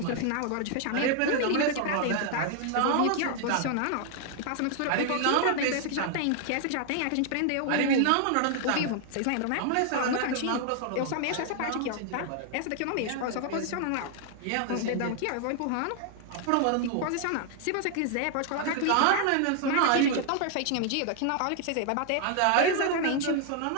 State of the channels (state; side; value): different; both; correlation 0.00